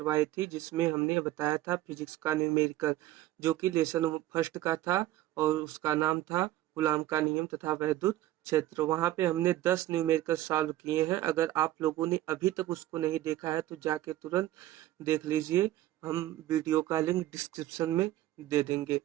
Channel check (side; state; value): left; quieter; 14.8 dB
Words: थी जिसमें हमने बताया था फिजिक्स का न्यूमेरिकल, जो कि लेसन फर्स्ट का था और उसका नाम था कूलॉम का नियम तथा वैद्युत क्षेत्र। वहाँ पे हमने 10 न्यूमेरिकल सॉल्व किए हैं। अगर आप लोगों ने अभी तक उसको नहीं देखा है तो जाके तुरंत देख लीजिए। हम वीडियो का लिंक डिस्क्रिप्शन में दे देंगे।